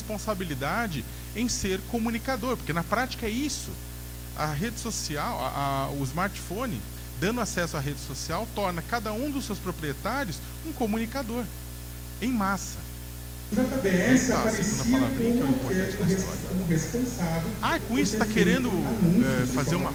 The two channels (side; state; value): both; identical; correlation 1.00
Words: em ser comunicador, porque na prática é isso. A rede social, o smartphone, dando acesso à rede social, torna cada um dos seus proprietários um comunicador, em massa. O JBS aparecia como responsável. Com isso está querendo fazer uma